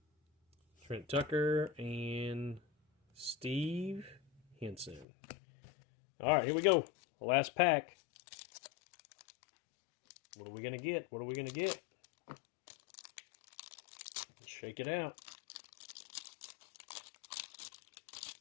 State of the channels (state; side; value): drops out; right; at 5.1 s